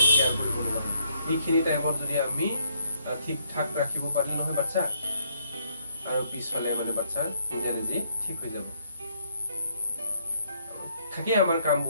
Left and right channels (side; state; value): both; inverted; correlation -0.70